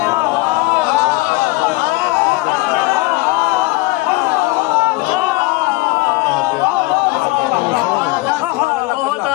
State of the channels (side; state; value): right; quieter; 21.7 dB